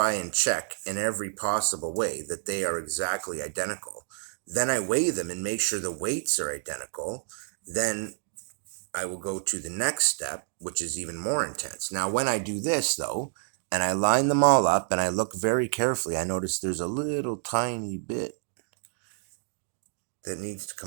and check in every possible way that they are exactly identical. Then I weigh them and make sure the weights are identical. Then I will go to the next step, which is even more intense. Now, when I do this, though, and I line them all up and I look very carefully, I notice there's a little tiny bit that needs to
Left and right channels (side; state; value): left; silent; digital silence